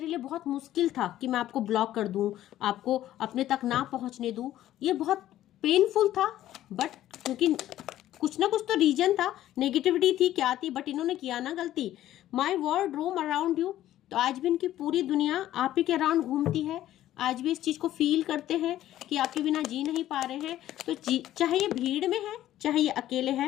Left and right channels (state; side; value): quieter; right; 13.3 dB